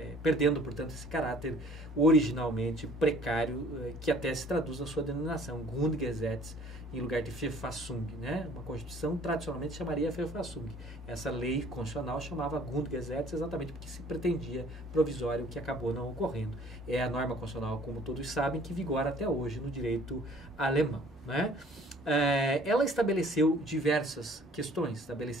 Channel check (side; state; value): both; normal; correlation 0.54